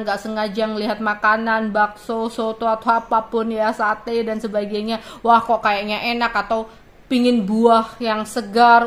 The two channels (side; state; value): both; identical; correlation 1.00